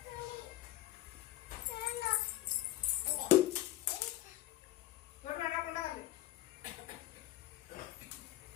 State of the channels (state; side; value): quieter; right; 15.0 dB